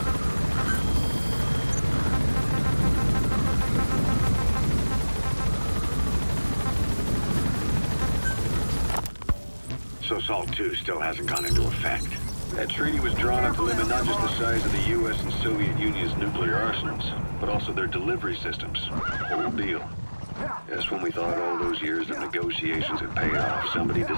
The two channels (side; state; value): both; inverted; correlation -1.00